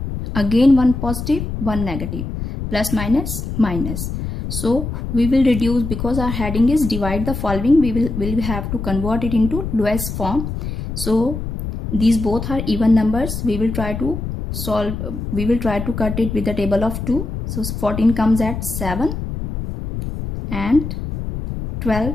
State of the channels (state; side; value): noise; left; rumble, 5 dB below the sound